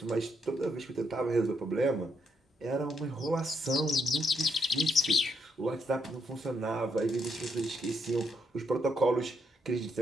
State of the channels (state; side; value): normal; both; correlation 0.77